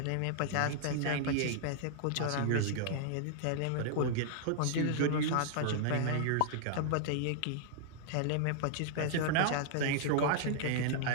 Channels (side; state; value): both; different; correlation -0.01